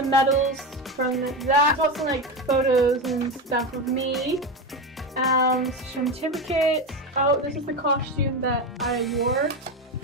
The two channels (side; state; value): both; normal; correlation 0.18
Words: medals from that. I got some like photos and stuff of me. Some certificates. Oh, this is the costume that I wore.